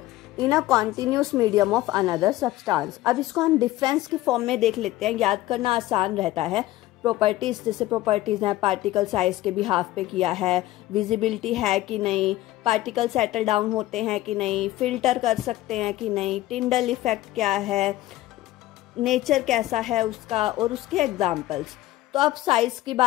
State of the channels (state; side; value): quieter; right; 16.1 dB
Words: in a continuous medium of another substance. अब इसको हम डिफरेंस की फॉर्म में देख लेते हैं, याद करना आसान रहता है। प्रॉपर्टीज, जैसे प्रॉपर्टीज हैं, पार्टिकल साइज के बिहाफ पे किया है, विजिबिलिटी है कि नहीं, पार्टिकल सेटल डाउन होते हैं कि नहीं, फिल्टर कर सकते हैं कि नहीं, टिंडल इफेक्ट क्या है, नेचर कैसा है उसका, और उसके एग्जाम्पल्स। तो अब साइज की